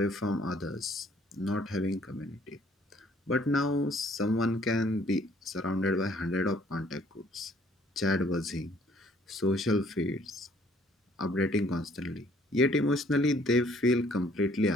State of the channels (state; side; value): normal; both; correlation 0.61